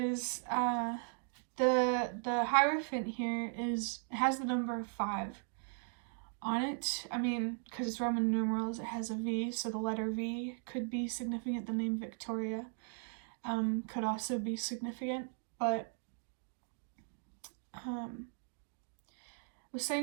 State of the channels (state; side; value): silent; left; 53 dB below the other